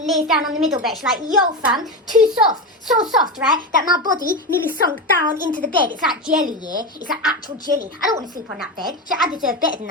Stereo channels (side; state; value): both; normal; correlation 0.18